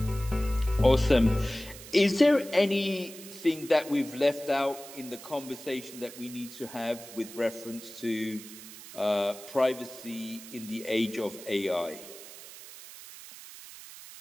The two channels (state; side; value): noise; right; hiss, 15 dB below the sound